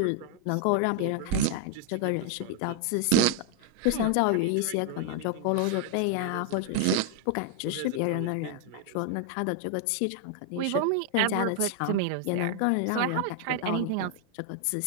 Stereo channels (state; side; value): different; both; correlation 0.00